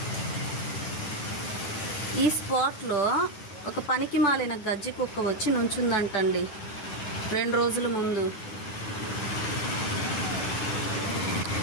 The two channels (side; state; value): right; late; 9.3 ms